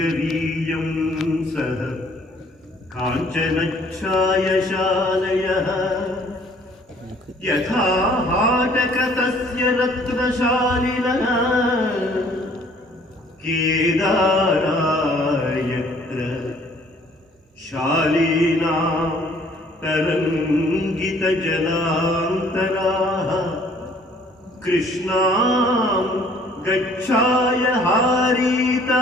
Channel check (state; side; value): normal; both; correlation 0.58